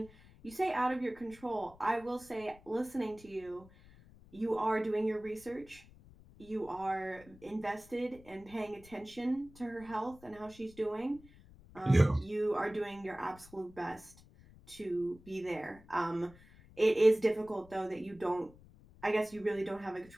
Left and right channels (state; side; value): noise; left; rumble, 23 dB below the sound